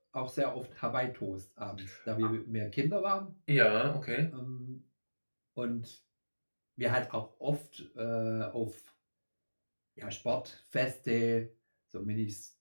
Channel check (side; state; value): both; inverted; correlation -1.00